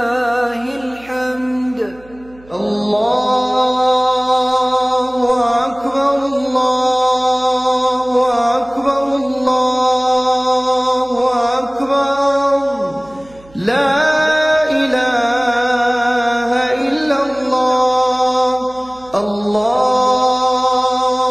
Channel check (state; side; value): noise; right; hum, 25 dB below the sound